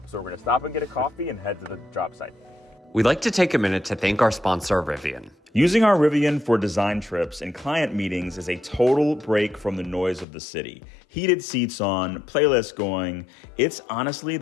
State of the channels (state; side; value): drops out; right; at 10.2 s